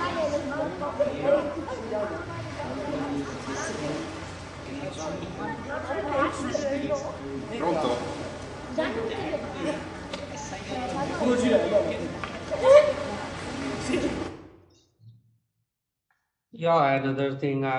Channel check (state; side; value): identical; both; correlation 1.00